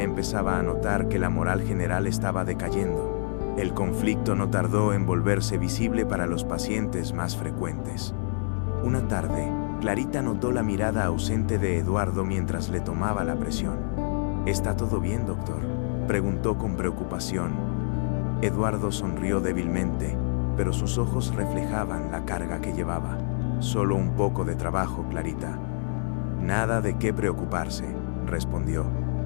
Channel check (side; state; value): right; silent; 57 dB below the other